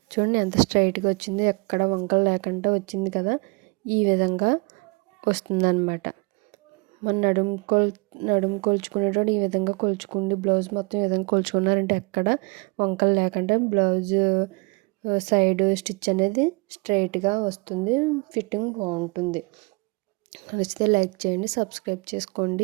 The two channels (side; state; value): left; quieter; 29.3 dB